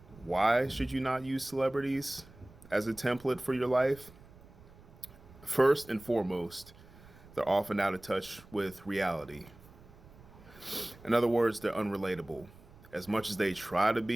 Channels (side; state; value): right; noise; rumble, 22 dB below the sound